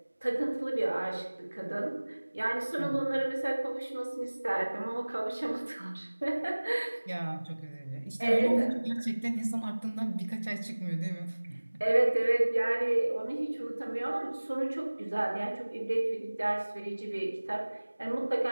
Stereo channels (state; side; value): inverted; both; correlation -1.00